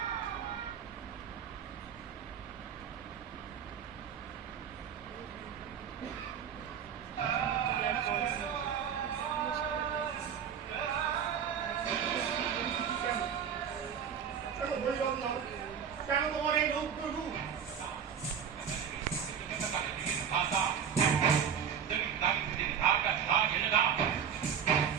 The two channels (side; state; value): left; quieter; 7.9 dB